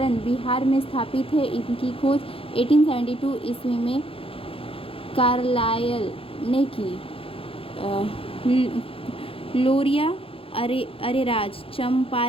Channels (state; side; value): late; right; 0.27 ms